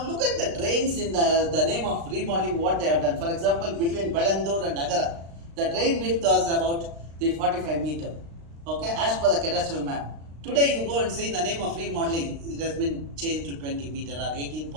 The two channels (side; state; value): left; late; 36 ms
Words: look at the drains in the name of remodeling, what they have done. For example, between Belandur and Agara, the drain width was about the 45 meter, okay, as per the cadastral map. Today you go and see in the name of remodeling, it has been changed to 20 meter or